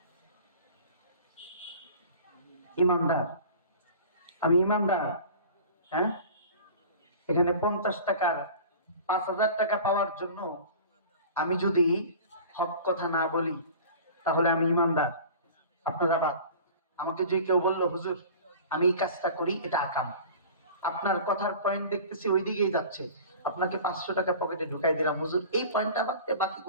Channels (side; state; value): both; inverted; correlation -0.41